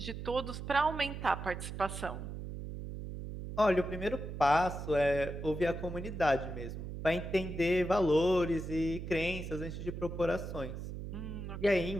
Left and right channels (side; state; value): right; noise; hum, 7 dB below the sound